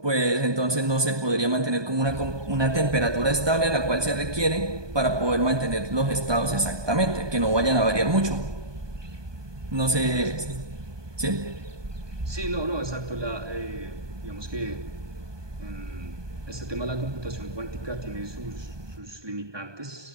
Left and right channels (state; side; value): late; left; 1.2 ms